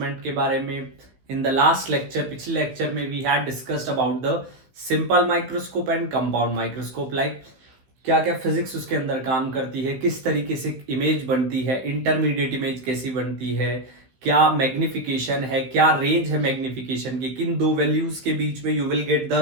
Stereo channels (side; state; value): left; late; 15 ms